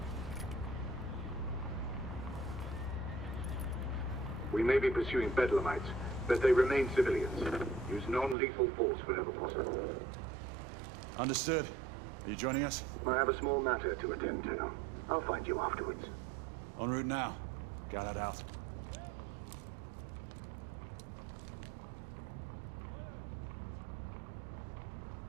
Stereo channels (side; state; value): left; drops out; at 8.3 s